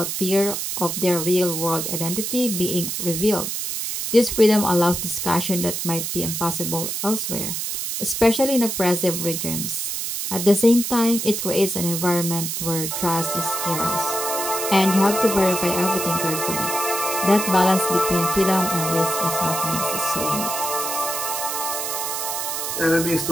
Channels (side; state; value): right; noise; hiss, 3 dB below the sound